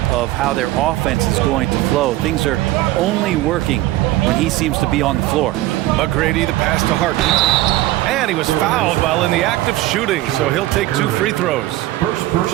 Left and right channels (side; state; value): left; quieter; 16.5 dB